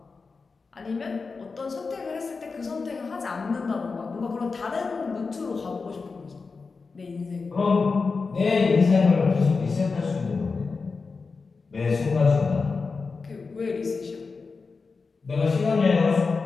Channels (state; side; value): quieter; right; 4.5 dB